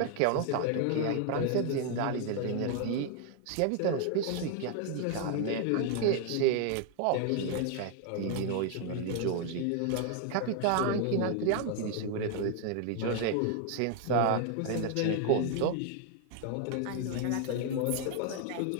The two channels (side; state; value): both; different; correlation 0.00